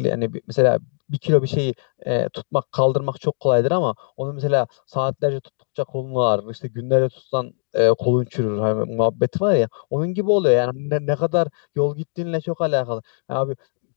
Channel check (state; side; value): silent; right; digital silence